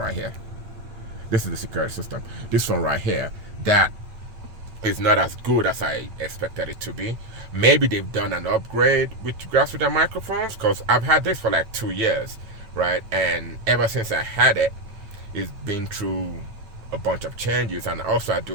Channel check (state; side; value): late; left; 8.8 ms